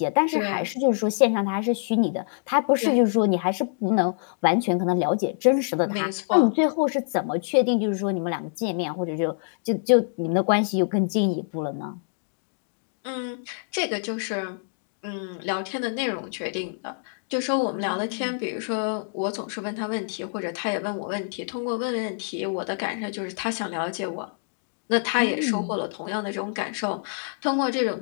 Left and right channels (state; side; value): silent; right; digital silence